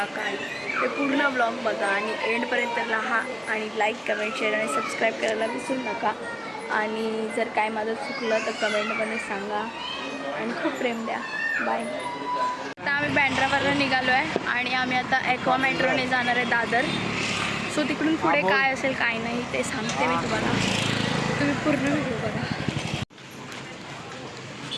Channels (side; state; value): both; identical; correlation 1.00